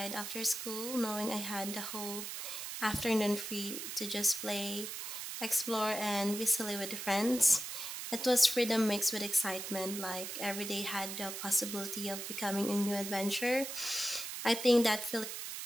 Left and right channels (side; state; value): right; noise; hiss, 6 dB below the sound